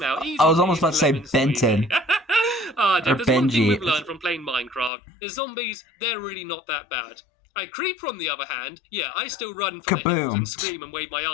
out. Easy, I was almost about to say Benton. Or Benji. There's one thing we've learned from playing Minecraft. The zombies, they're really not that bad. Creeper, on the other hand, yeah, I still run for the hills and scream and wave my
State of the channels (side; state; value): right; drops out; at 4.9 s